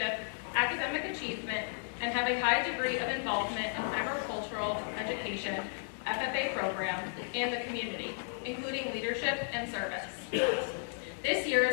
academic achievement, and have a high degree of involvement in agricultural education, FFA program, and the community, including leadership and service. This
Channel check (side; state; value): right; silent; digital silence